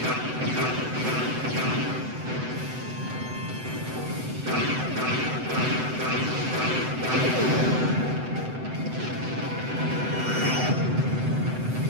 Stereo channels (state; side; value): late; left; 7.9 ms